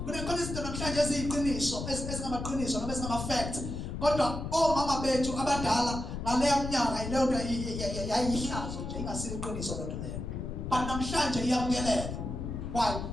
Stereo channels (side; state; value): left; noise; rumble, 5 dB below the sound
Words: kunekhona izinto namhlanje eziyiqiniso ezingamaqiniso noma ezingama-fact kodwa omama bethu abadala ngaleyo mnyaka ileyo nto yayihlazo nje ingasile iqiniso lento leyo but namhlanje iyamukeleka. Why?